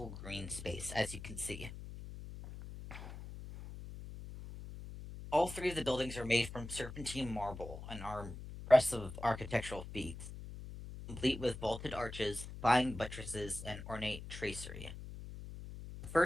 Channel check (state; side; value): noise; left; hum, 11 dB below the sound